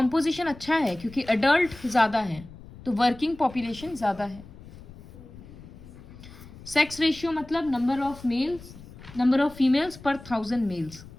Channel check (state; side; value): noise; left; rumble, 18 dB below the sound